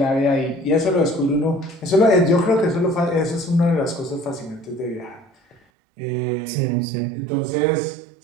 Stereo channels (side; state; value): left; drops out; at 5.6 s